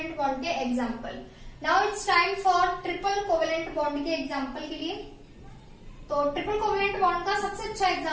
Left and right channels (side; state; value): both; identical; correlation 1.00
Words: bond के example. Now it's time for triple covalent bond के एग्जांपल के लिए। तो ट्रिपल कोवलेंट बॉन्ड का सबसे अच्छा